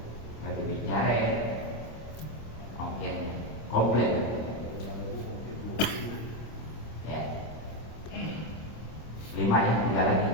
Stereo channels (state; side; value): late; right; 26 ms